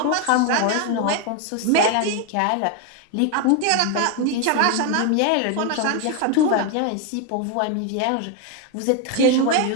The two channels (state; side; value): different; both; correlation 0.01